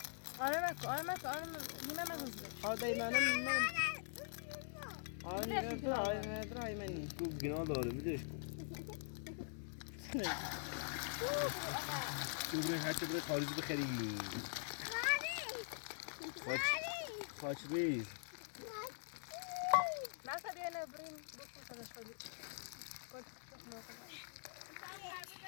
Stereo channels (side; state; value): right; silent; digital silence